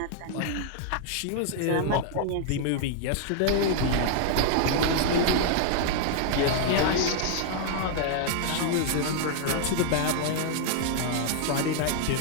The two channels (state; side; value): different; both; correlation 0.00